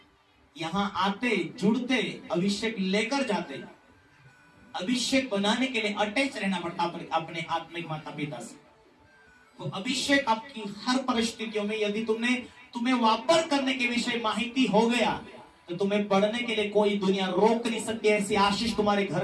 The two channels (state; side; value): identical; both; correlation 1.00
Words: यहां आते जुड़ते अभिषेक लेकर जाते। अभिषेक बनाने के लिए अटैच रहना पड़ता अपने आत्मिक माता पिता से। वो अभिषेक आपकी हर परिस्थितियों में, यदि तुम्हें वापर करने के विषय माहिती हो गया तो तुम्हें बढ़ने के लिए कोई दुनिया रोक नहीं सकती। ऐसी आशीष तुम्हारे